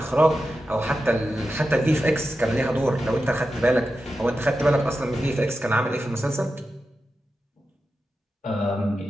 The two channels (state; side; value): normal; both; correlation 0.91